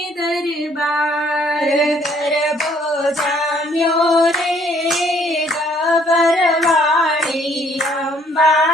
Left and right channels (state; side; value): normal; both; correlation 0.63